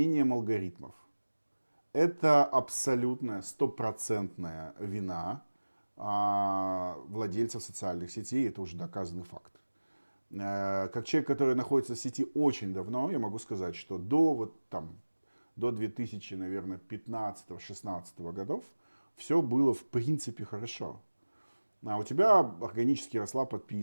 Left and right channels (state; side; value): inverted; both; correlation -1.00